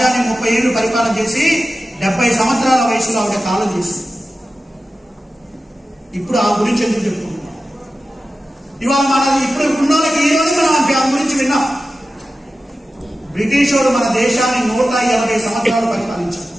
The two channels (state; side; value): normal; both; correlation 0.94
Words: 30 ఏళ్లు పరిపాలన చేసి 70 సంవత్సరాల వయసులో ఆవిడ కాలం చేసింది. ఇప్పుడు ఆ గురించి ఎందుకు చెప్పుకుంటున్నాం? ఇవాళ మన ఇప్పుడు ఉన్న వాళ్ళకి ఈ రోజు మనం ఆ గురించి విన్నాం. బ్రిటిష్ వాడు మన దేశాన్ని 180 సంవత్సరాలు పరిపాలించారు.